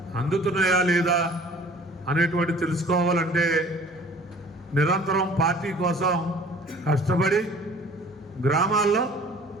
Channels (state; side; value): normal; both; correlation 0.50